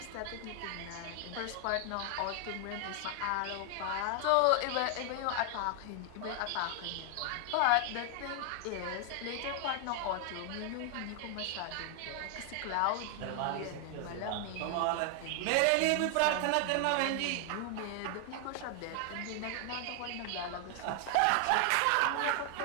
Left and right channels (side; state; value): both; different; correlation 0.00